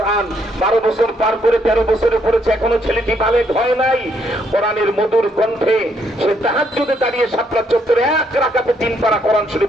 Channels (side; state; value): both; normal; correlation 0.72